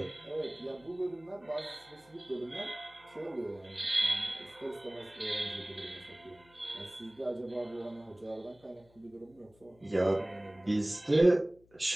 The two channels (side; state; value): left; noise; hum, 29 dB below the sound